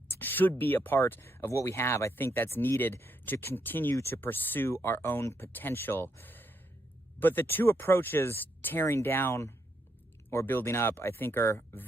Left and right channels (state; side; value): normal; both; correlation 0.78